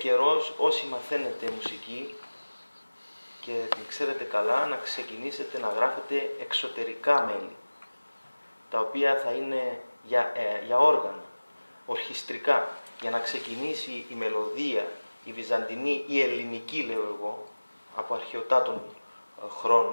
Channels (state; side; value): inverted; both; correlation -1.00